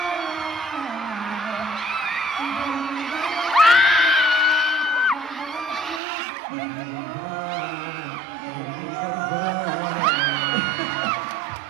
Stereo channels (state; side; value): drops out; left; at 6.0 s